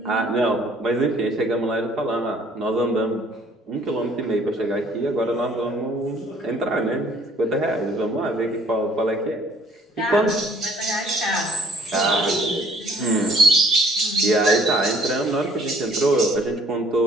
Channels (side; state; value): both; normal; correlation 0.59